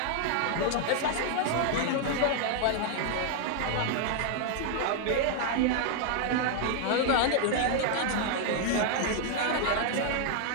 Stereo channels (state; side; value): different; both; correlation 0.00